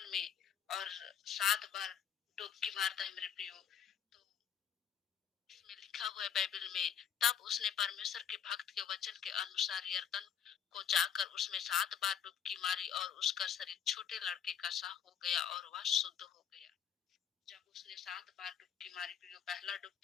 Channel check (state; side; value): quieter; right; 8.2 dB